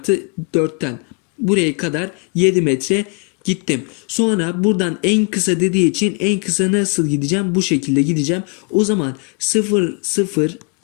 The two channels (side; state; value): right; quieter; 36.6 dB